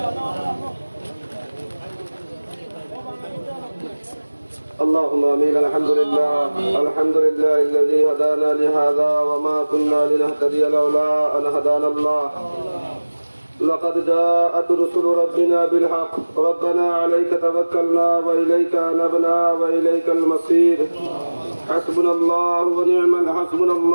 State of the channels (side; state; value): both; inverted; correlation -1.00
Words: اللهم امين. الحمد لله الذي هدانا لهذا وما كنا لنهتدي لولا ان هدانا الله. لقد جاءت رسل ربنا بالحق. ربنا عليك توكلنا واليك انبنا واليك المصير. حسبنا الله